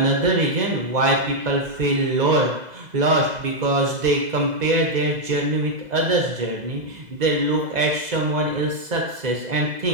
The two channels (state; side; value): late; left; 2.0 ms